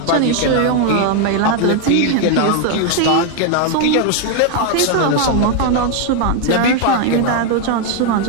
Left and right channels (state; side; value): different; both; correlation 0.01